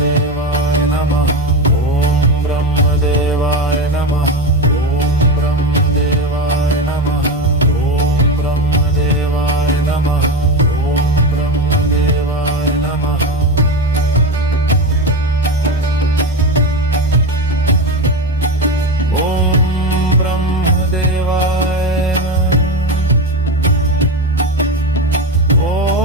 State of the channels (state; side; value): normal; both; correlation 0.17